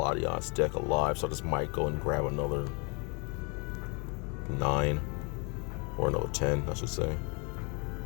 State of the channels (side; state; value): right; quieter; 32.5 dB